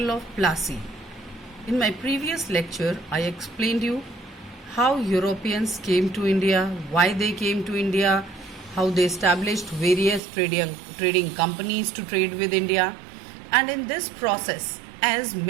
of Plassey. In my previous lecture, I explained you how Europeans came to India, why they came to India, how they established various trading companies to trade with India. And in this process, as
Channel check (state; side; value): drops out; left; at 10.2 s